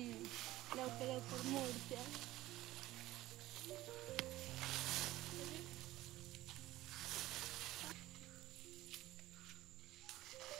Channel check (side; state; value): left; quieter; 16.4 dB